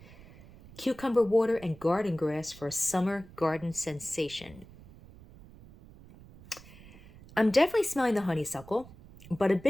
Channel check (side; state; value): right; noise; rumble, 20 dB below the sound